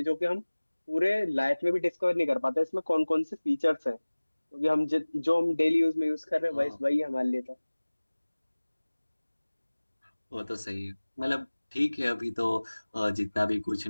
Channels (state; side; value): inverted; both; correlation -1.00